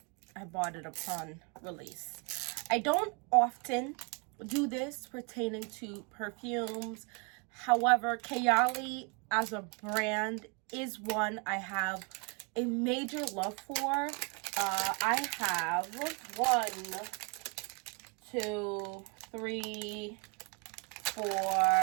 bought it upon release. I don't often do this pertaining to perfumes. However, Kayali as a brand is one I have a major love for. I have 1, 2, 3,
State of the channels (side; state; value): left; quieter; 33.5 dB